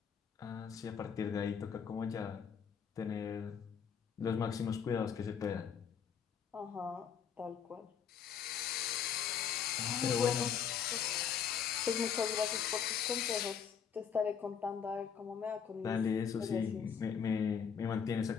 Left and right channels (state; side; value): quieter; right; 7.4 dB